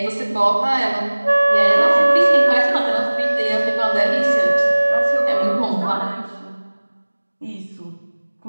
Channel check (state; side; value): inverted; both; correlation -1.00